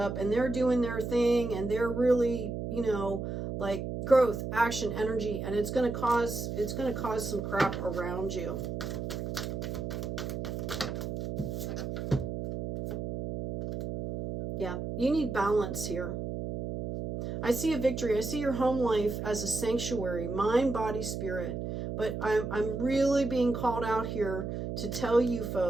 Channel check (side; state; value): right; noise; hum, 4 dB below the sound